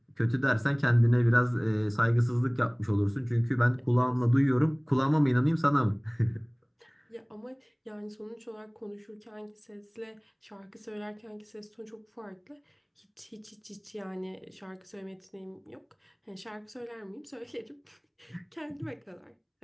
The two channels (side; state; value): both; identical; correlation 1.00